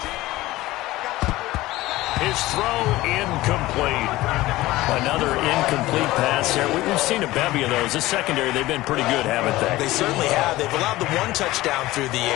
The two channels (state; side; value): quieter; right; 17.7 dB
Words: His throw incomplete. Another incomplete pass there. We've seen a bevy of those. This secondary, they've been pretty good, haven't they? They certainly have. They've allowed the 1 touchdown through the